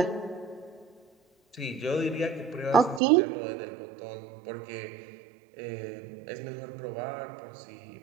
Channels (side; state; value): left; drops out; at 3.0 s